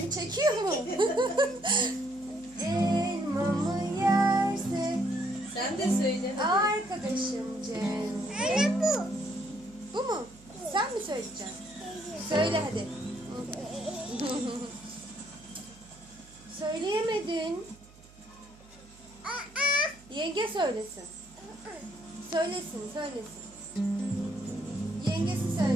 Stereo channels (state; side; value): noise; right; hum, 24 dB below the sound